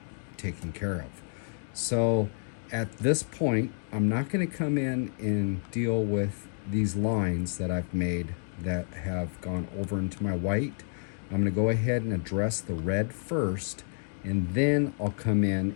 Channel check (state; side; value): silent; right; 57 dB below the other